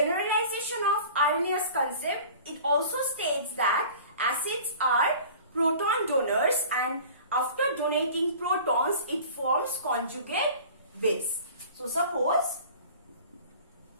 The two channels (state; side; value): inverted; both; correlation -0.43